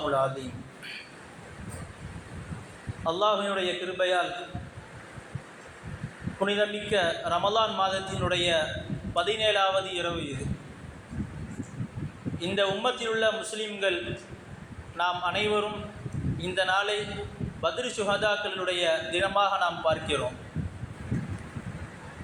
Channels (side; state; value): both; identical; correlation 1.00